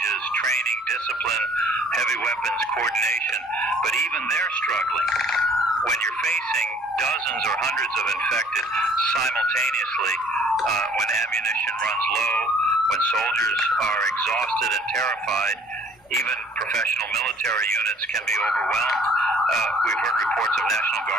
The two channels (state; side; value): normal; both; correlation 0.56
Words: training, discipline, heavy weapons, coordination, but even they're struggling. When you're facing dozens or hundreds of infected simultaneously, when ammunition runs low, when soldiers are exhausted and terrified, even professional military units can be overwhelmed. We've heard reports of National